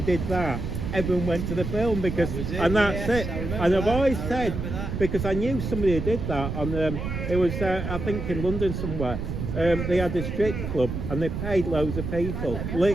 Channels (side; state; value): right; noise; rumble, 4 dB below the sound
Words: did that, everyone went to the film because, That was it, and that's yes, it. I remember And I've that, always I said, remember that. because I knew somebody who did that on, it was, I think in London somewhere. They had a strip club and they paid loads of people,